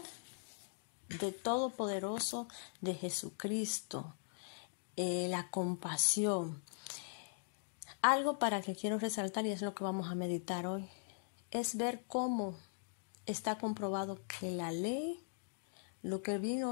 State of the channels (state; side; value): silent; right; digital silence